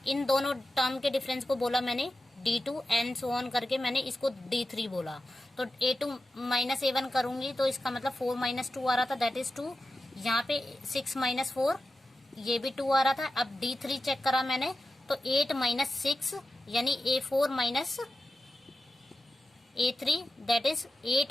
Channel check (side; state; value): both; normal; correlation 0.93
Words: इन दोनों टर्म के डिफरेंस को बोला मैंने D2 एंड सो ऑन करके मैंने इसको D3 बोला। तो A2 माइनस A1 करूंगी तो इसका मतलब 4 माइनस 2 आ रहा था, दैट इज 2। यहाँ पे 6 माइनस 4, ये भी 2 आ रहा था। अब D3 चेक करा मैंने तो 8 माइनस 6 यानी A4 minus A3 that is